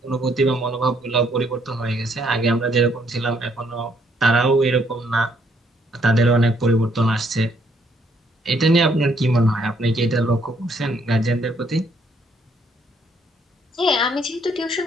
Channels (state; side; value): normal; both; correlation 0.69